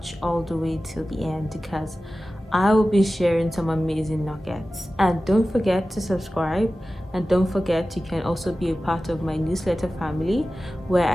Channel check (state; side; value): normal; both; correlation 0.95